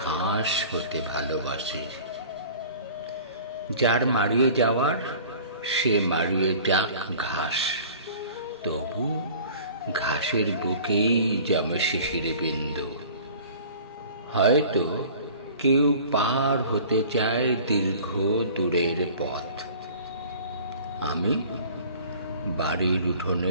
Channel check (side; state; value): both; inverted; correlation -0.45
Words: ঘাস হতে ভালোবাসি। যার মারিয়ে যাওয়ার সে মারিয়ে যাক ঘাস, তবু ঘাসের বুকেই জমে শিশির বিন্দু। হয়তো কেউ পার হতে চায় দীর্ঘ দূরের পথ, আমি বাড়ির